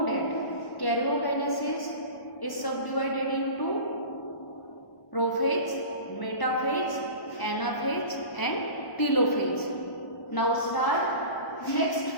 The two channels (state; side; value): late; right; 1.0 ms